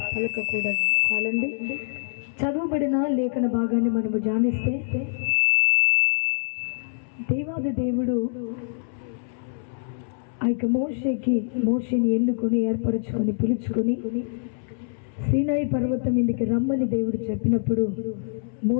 పలకకూడదు. చాలండి. చదువుబడిన లేఖన భాగాన్ని మనము ధ్యానిస్తే, దేవాది దేవుడు ఆ యొక్క మోషేని ఎన్నుకొని ఏర్పరచుకొని పిలుచుకొని సీనాయి పర్వతం మీదకి రమ్మని దేవుడు చెప్పినప్పుడు,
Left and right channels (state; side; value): silent; right; 62 dB below the other